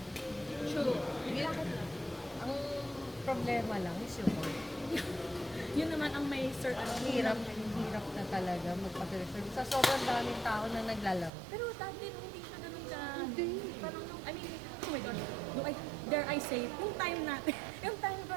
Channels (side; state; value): left; drops out; at 11.3 s